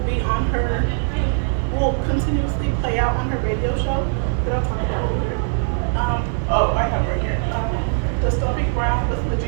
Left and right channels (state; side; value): silent; left; 65 dB below the other